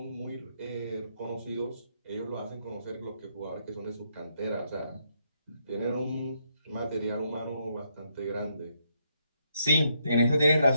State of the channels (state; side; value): inverted; both; correlation -0.77